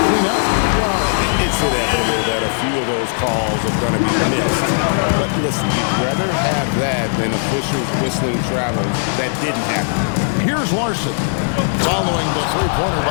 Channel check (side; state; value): right; silent; digital silence